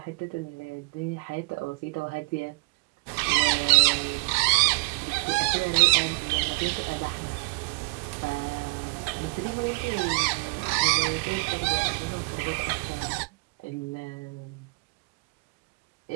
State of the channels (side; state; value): left; quieter; 32.2 dB